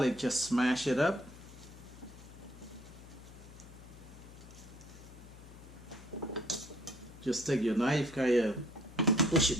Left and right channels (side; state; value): left; noise; hum, 18 dB below the sound